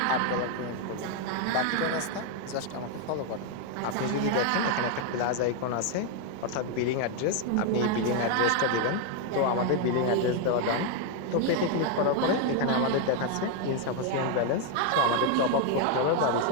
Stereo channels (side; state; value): both; different; correlation 0.01